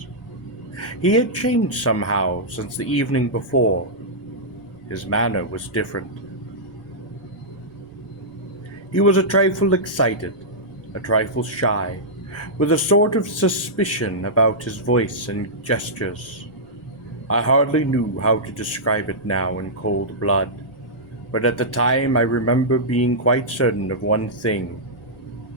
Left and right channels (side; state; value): right; noise; rumble, 28 dB below the sound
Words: He had changed somehow since the evening before. His manner was different. He was a trifle excited, a trifle shy, with a sort of suspicion about his voice and gestures. I hardly knew how to describe it now in cold blood, but at the time I remember being quite certain of one thing,